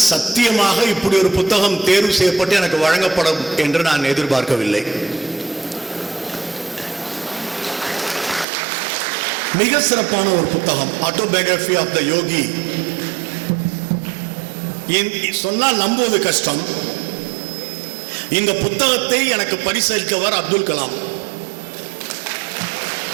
சத்தியமாக இப்படி ஒரு புத்தகம் தேர்வு செய்யப்பட்டு எனக்கு வழங்கப்படும் என்று நான் எதிர்பார்க்கவில்லை. மிக சிறப்பான ஒரு புத்தகம், ஆட்டோபயோகிராஃபி ஆஃப் த யோகி. சொன்னால் நம்புவது கஷ்டம். இந்த புத்தகத்தை எனக்கு பரிசளித்தவர் அப்துல் கலாம்.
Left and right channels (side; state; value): left; drops out; at 8.5 s